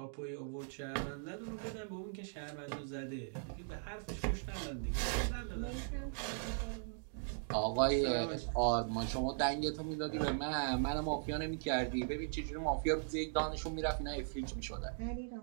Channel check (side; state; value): left; silent; digital silence